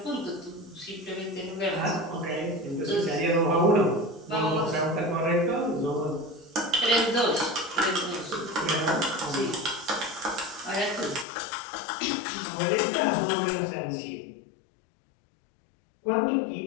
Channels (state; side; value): drops out; right; at 11.2 s